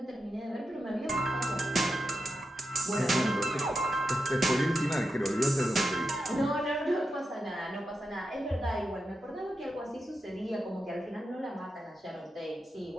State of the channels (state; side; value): normal; both; correlation 0.87